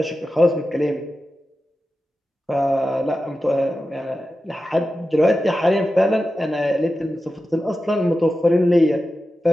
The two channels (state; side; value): normal; both; correlation 0.92